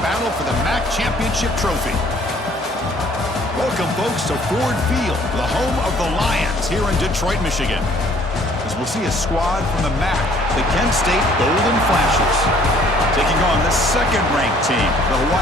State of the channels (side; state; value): both; normal; correlation 0.58